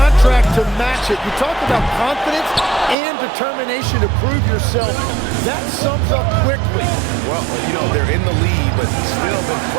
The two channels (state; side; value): drops out; left; at 3.0 s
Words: to match it. You talk about confidence and determination to prove yourself. That sums up quickly. Well, you know, they're in the lead, but still been